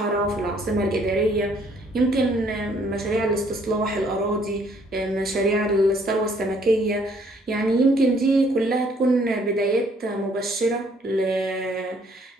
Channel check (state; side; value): normal; both; correlation 0.64